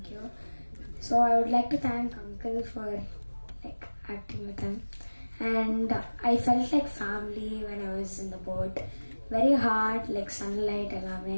you. So I would like to thank Uncle for like acting with him, and I felt like family when I was in the boat. Very hard, like sunlight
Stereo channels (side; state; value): both; inverted; correlation -1.00